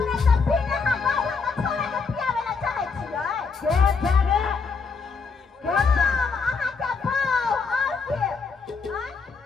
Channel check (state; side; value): quieter; right; 4.9 dB